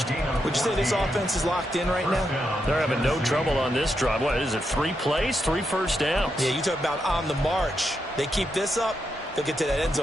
Would you say this offense is locked in right now? They're having no trouble on this drive. What is it, 3 plays, 3 first downs? Yeah, you talk about on the march. They keep this up, they'll get to that end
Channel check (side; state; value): both; normal; correlation 0.83